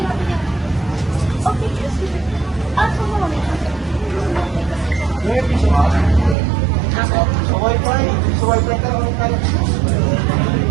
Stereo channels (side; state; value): left; drops out; at 6.4 s